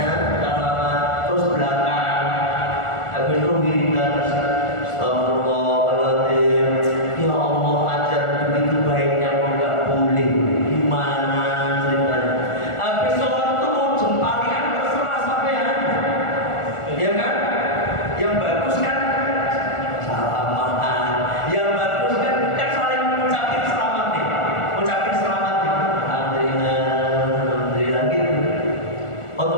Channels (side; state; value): right; late; 1.4 ms